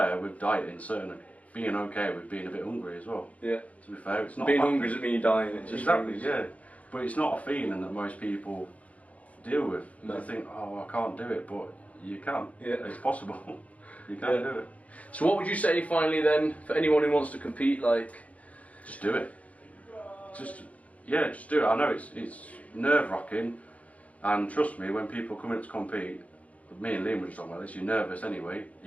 with dieting, certainly being okay with being a bit hungry as well. Yeah. To be fair, it's not... Being hungry doesn't mean you're dying, it's just... Exactly, yeah. But it's not a feeling that most people deal with. No. They think, oh, I can't do it, but you can. Yeah. It's possible. You can do it. So what would you say finally then, for anyone who wants to compete, like... Just do it. Just do it. I know it's nerve-wracking, and trust me, when people come in to compete, me and Liam were just talking about this, you're nervous anyway.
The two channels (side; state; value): right; late; 0.068 ms